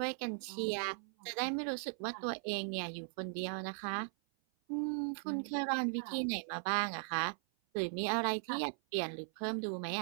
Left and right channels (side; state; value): left; silent; 52 dB below the other